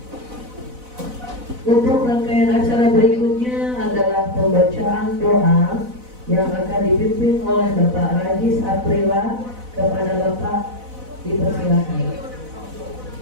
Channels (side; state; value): left; late; 4.0 ms